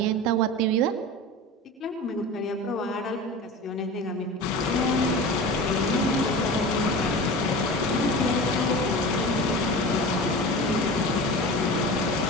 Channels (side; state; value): both; normal; correlation 0.32